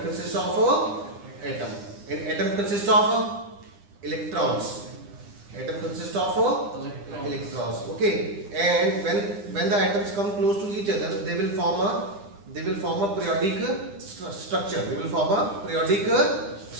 consists of atom, and atom consists of electrons. Atom consists of electrons. Okay, and when the atoms come close to each other, they will form a periodic structure. They will form a periodic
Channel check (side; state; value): left; late; 9.9 ms